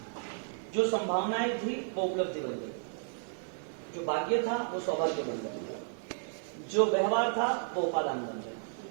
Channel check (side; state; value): left; silent; digital silence